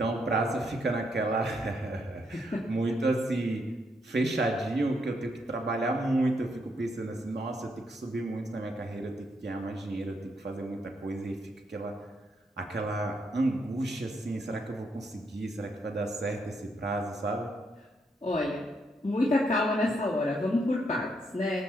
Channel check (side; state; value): both; normal; correlation 0.77